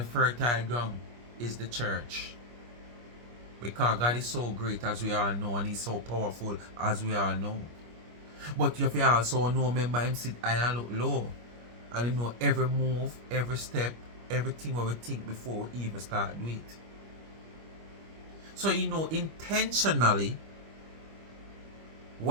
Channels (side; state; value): left; late; 25 ms